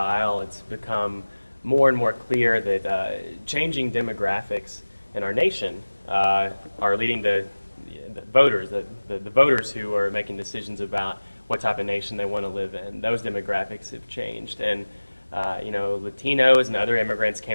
it's become more and more clear that changing demographics in our nation are leading to the voters, the voters who are making decisions about what type of nation they want to live in. Those demographics have changed, and Latinos and other immigrants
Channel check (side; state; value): both; inverted; correlation -1.00